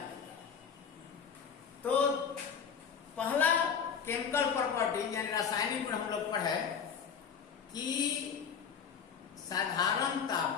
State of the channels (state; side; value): quieter; right; 6.9 dB